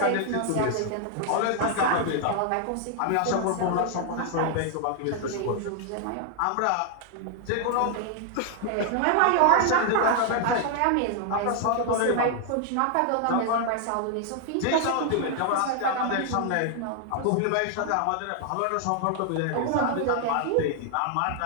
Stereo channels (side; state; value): both; different; correlation 0.00